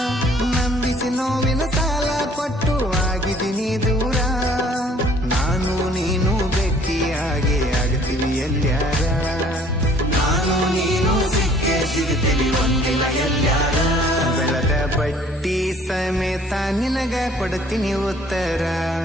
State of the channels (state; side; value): normal; both; correlation 0.56